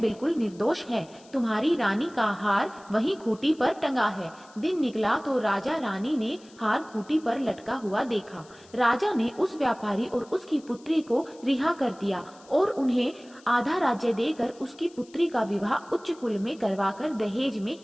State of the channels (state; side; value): noise; left; hiss, 26 dB below the sound